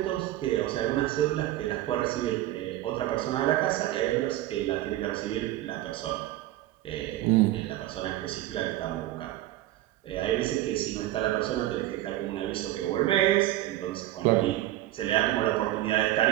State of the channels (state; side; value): quieter; left; 15.0 dB